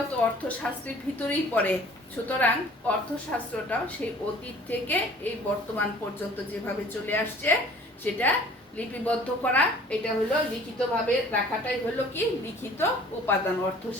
তো অর্থশাস্ত্রের ভিতরেই পড়ে। সুতরাং অর্থশাস্ত্রটাও সেই অতীত থেকে এই বর্তমান পর্যন্ত যেভাবে চলে আসছে সেটা লিপিবদ্ধ করা, এটা হলো লিখিতভাবে রাখাটাই হলো কি লিখিত উপাদান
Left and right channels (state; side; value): normal; both; correlation 0.50